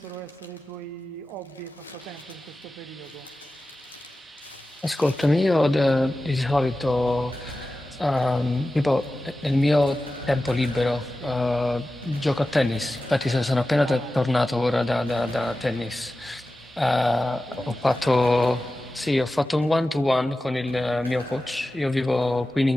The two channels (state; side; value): normal; both; correlation 0.94